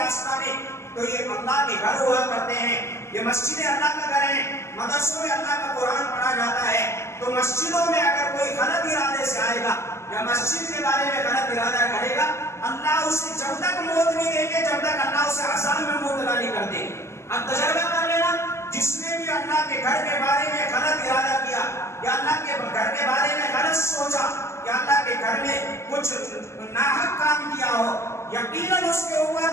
آستانے, تو یہ اللہ کے گھر ہوا کرتے ہیں. یہ مسجدیں اللہ کا گھر ہیں, مدرسوں میں اللہ کا قرآن پڑھا جاتا ہے. تو مسجدوں میں اگر کوئی غلط ارادے سے آئے گا یا مسجد کے بارے میں غلط ارادہ کرے گا, اللہ اسے جب تک موت نہیں دیں گے, جب تک اللہ اسے عذاب میں مبتلا نہیں کر دیں گے. اب تجربہ کر لینا, جس نے بھی اللہ کے گھر کے بارے میں غلط ارادہ کیا, یا اللہ کے گھر کے بارے میں غلط سوچا, یا اللہ کے گھر میں کچھ ناحق کام کیا ہو, یقیناً اس کے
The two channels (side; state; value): right; late; 0.13 ms